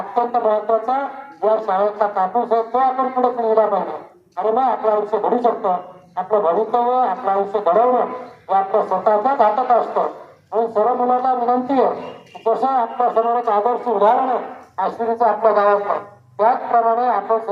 महत्वाचा या शाळेतला कापूस आहे तो आपण पुढे पिढीला पाहिजे आणि मग आपलं आयुष्य घडू शकतो. आपलं भवितव्य आपलं आयुष्य घडवणं हे आपल्या स्वतःच्याच हातात असतं. म्हणून सर्व मुलांना विनंती आहे जसं आपल्या समोर एक आदर्श उदाहरण आहे अश्विनीचं आपल्या गावातलं त्याचप्रमाणे आपण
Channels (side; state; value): both; identical; correlation 1.00